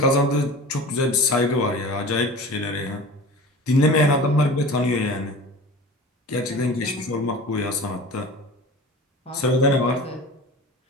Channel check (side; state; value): both; normal; correlation 0.37